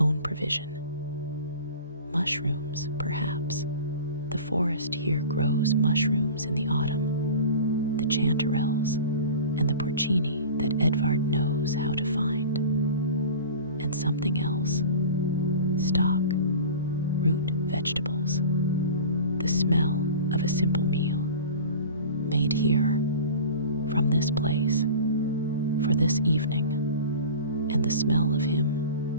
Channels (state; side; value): inverted; both; correlation -0.37